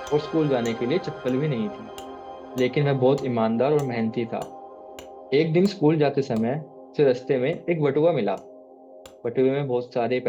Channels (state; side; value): identical; both; correlation 1.00